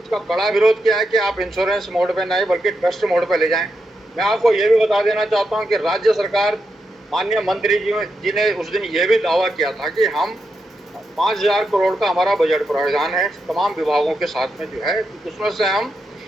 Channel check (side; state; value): both; normal; correlation 0.85